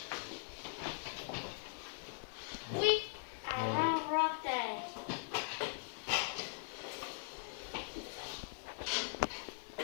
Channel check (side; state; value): right; silent; digital silence